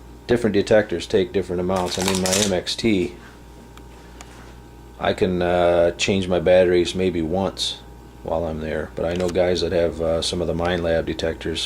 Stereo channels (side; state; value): both; identical; correlation 1.00